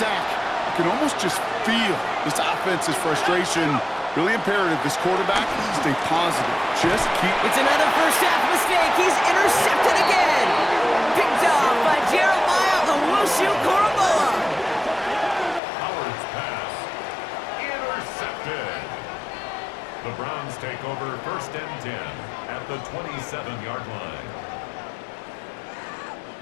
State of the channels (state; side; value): drops out; right; at 15.6 s